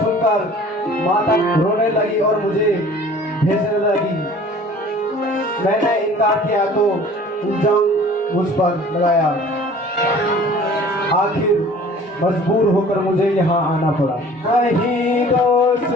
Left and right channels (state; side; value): normal; both; correlation 0.48